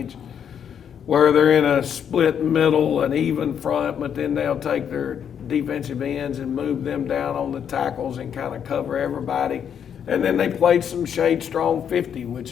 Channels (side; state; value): right; quieter; 8.3 dB